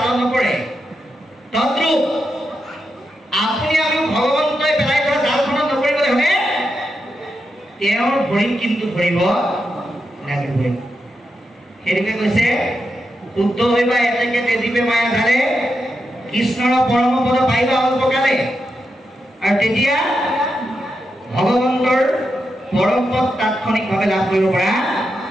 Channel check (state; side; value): normal; both; correlation 0.86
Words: নপৰে। তদ্ৰূপ আপুনি আমি ভগৱন্তই পেলাই থোৱা জালখনত নপৰিবলৈ হ'লে তেওঁৰ ভৰিত কিন্তু ধৰিব লাগিবই। সেইটোকে কৈছে শুদ্ধ হইবা এতেকে তেজিবে মায়া জালে কৃষ্ণৰ পৰম পদ পাইবা অল্পকালে। আৰু তেতিয়া ভগৱন্তৰ পৰম পদ তাৎক্ষণিকভাৱে লাভ কৰিব পৰা